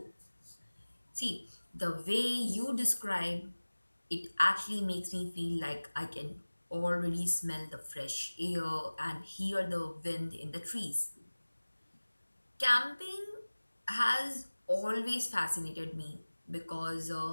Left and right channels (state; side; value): inverted; both; correlation -1.00